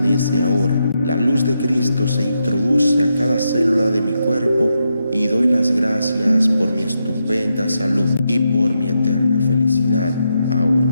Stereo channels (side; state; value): both; inverted; correlation -0.84